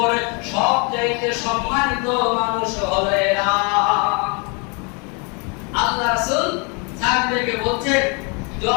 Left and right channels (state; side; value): quieter; right; 33.2 dB